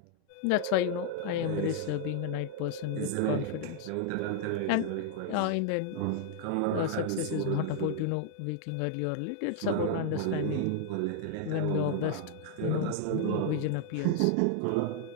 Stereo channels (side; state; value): both; different; correlation 0.00